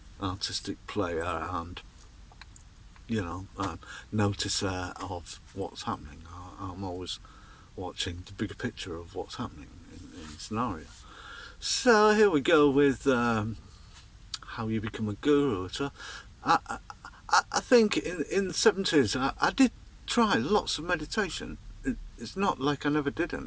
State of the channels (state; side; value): identical; both; correlation 1.00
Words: artistic player and, noticer of what's happening. I'm always watching the bigger picture of what's happening in the scenario. So here we go with how you become a guru. So I think in the 70s I did try lots of meditation. It's not like I never did